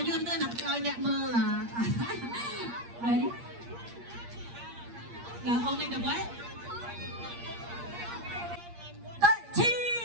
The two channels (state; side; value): late; left; 8.5 ms